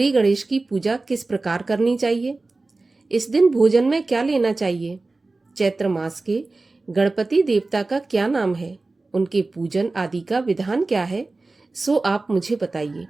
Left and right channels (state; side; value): quieter; left; 3.4 dB